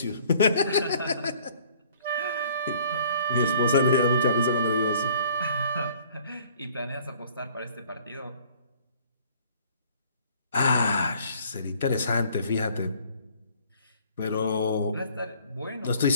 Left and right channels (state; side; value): inverted; both; correlation -0.56